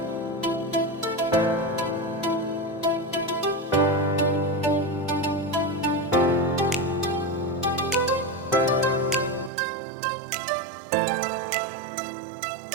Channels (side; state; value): left; drops out; at 9.5 s